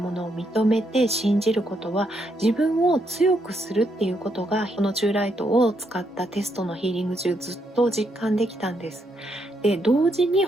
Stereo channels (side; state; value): both; normal; correlation 0.77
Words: のを認めて信じることは、自分を強くするっていうことが、このチューライトを使ったテストのヒーリング中ずっと実感できたんです。で、同時に